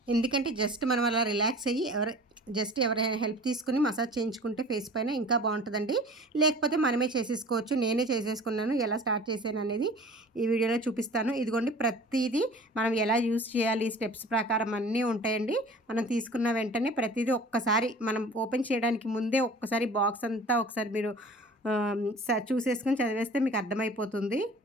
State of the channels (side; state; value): both; normal; correlation 0.43